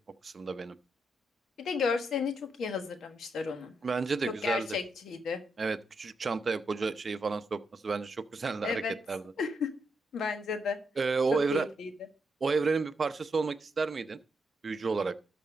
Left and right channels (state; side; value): normal; both; correlation 0.81